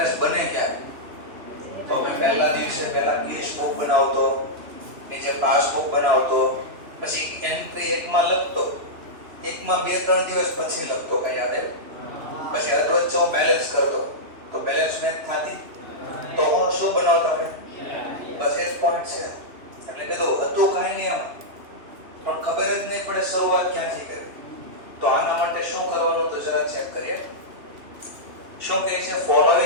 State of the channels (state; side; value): late; left; 2.9 ms